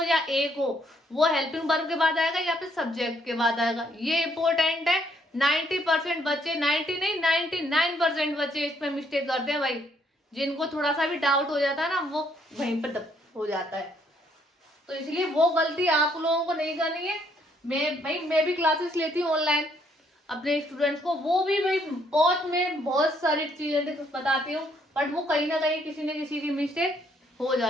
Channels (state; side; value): normal; both; correlation 0.69